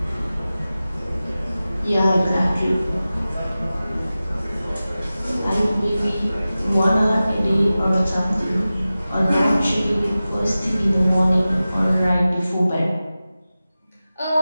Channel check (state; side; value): inverted; both; correlation -0.96